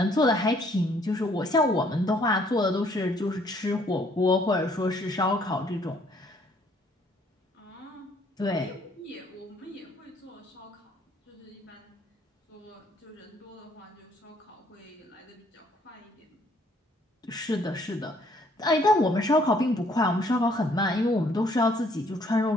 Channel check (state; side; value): normal; both; correlation 0.64